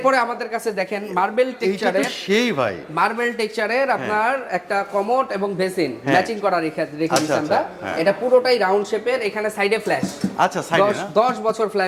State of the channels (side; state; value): both; identical; correlation 1.00